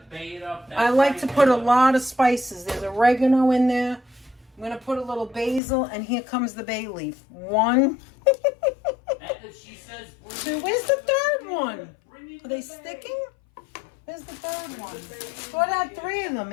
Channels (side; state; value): right; drops out; at 5.6 s